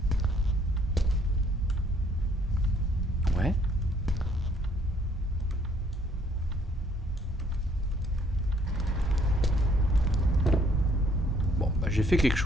Ouais. Bon, bah, j'ai fait quelque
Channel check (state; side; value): normal; both; correlation 0.64